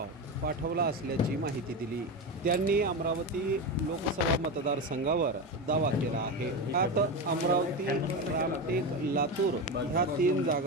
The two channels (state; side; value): normal; both; correlation 0.18